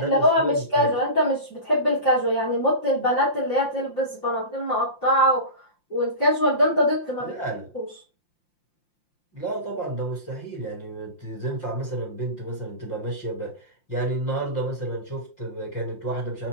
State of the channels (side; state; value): right; late; 5.8 ms